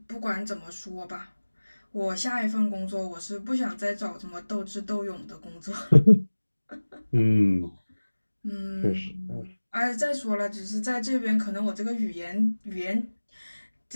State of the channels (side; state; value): both; inverted; correlation -1.00